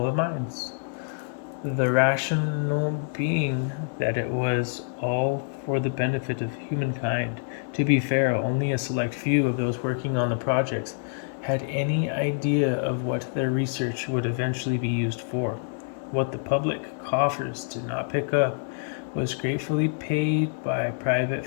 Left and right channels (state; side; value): silent; right; digital silence